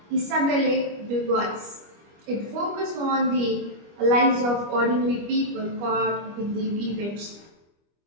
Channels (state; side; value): late; left; 25 ms